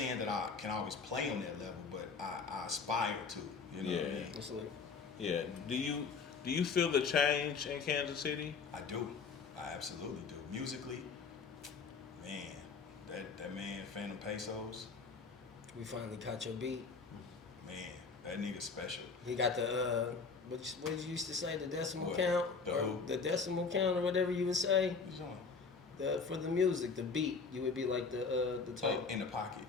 that I can always play on that level, but I aspire to. You know what I mean? Absolutely. Yeah. Do you feel the change in Kansas City? I do. I absolutely do. Musically, man, that man Phantom Pesos, We finally caught your beat. man, that nigga special. He got the what did you used to say, the decimal What? count, The or who? the decimal count, or whatever you would say. What's on? For the music, the beat, you would be like the type. In the pocket.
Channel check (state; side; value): quieter; right; 5.0 dB